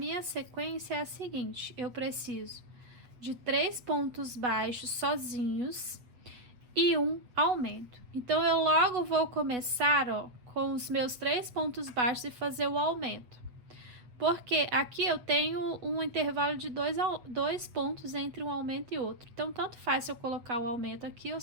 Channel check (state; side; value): late; left; 8.1 ms